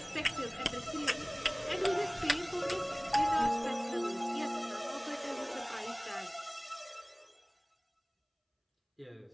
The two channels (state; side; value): identical; both; correlation 1.00